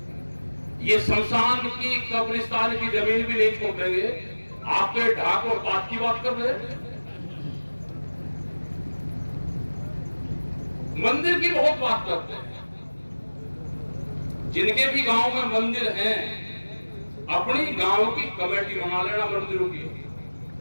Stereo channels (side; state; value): both; inverted; correlation -1.00